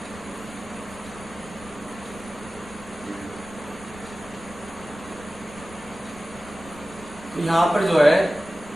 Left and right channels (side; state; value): left; noise; rumble, 19 dB below the sound